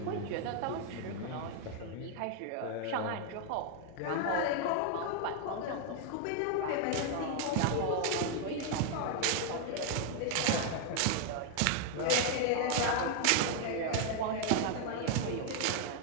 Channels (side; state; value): both; different; correlation 0.00